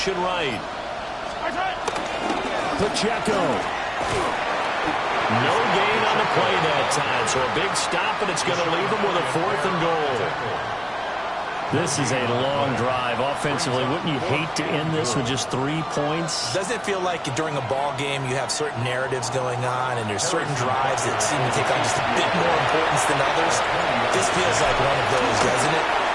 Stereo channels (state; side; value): identical; both; correlation 1.00